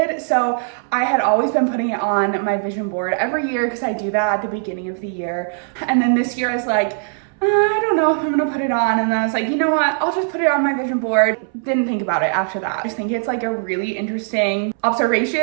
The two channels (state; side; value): silent; left; 63 dB below the other